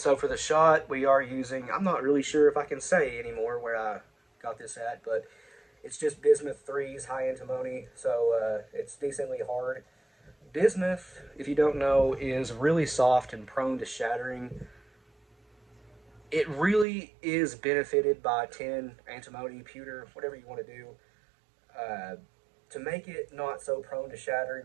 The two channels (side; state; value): left; drops out; at 16.9 s